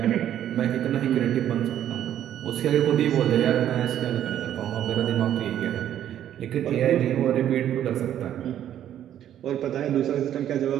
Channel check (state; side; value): quieter; left; 10.9 dB